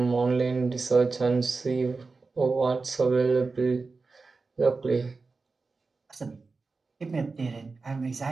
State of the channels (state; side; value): quieter; left; 4.1 dB